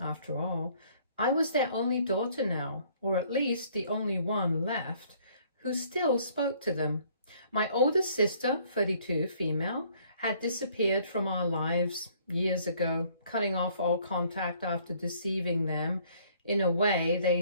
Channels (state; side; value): inverted; both; correlation -0.61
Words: all, I was their only daughter now, or at least the only one left, who still spoke to them. My older sister, 32, female, had disappeared from our lives years ago, cutting off all contact after deceiving them in a way